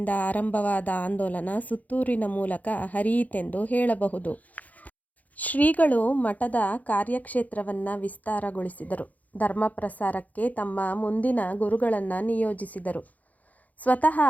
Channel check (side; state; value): right; late; 0.077 ms